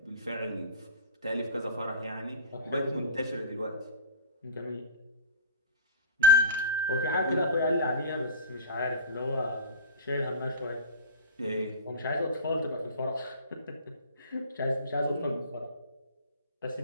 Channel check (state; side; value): inverted; both; correlation -0.32